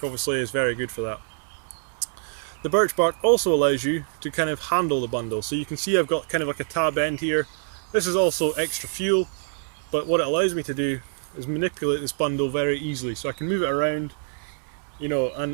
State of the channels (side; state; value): left; silent; digital silence